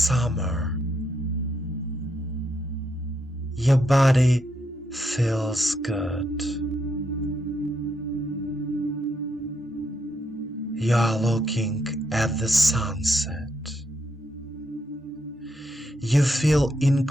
Your body feels good. You are looking at the sunset. You feel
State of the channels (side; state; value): both; normal; correlation 0.78